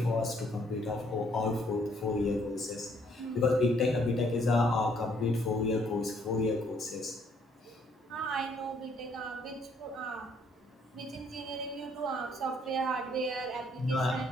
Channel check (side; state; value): both; normal; correlation 0.66